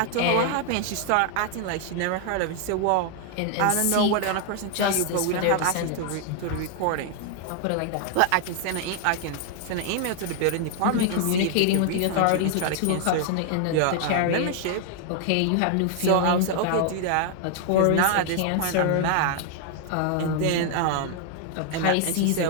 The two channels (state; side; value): different; both; correlation 0.00